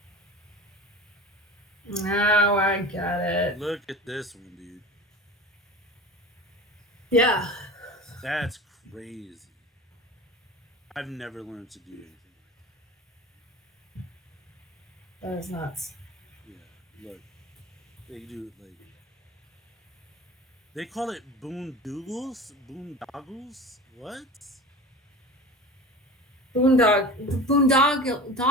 Now I get it. Look at this one, dude. Yeah. That's crazy. I've never learned to do anything like That is nuts. that. Yeah, look, they do like they call it boondoggles. Boondoggles. What?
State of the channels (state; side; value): normal; both; correlation 0.34